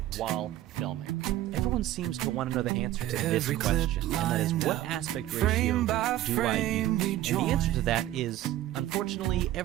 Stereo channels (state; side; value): quieter; left; 14.1 dB